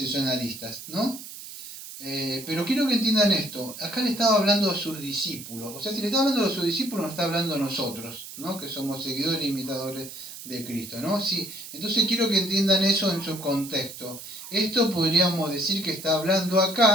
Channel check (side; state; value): right; noise; hiss, 12 dB below the sound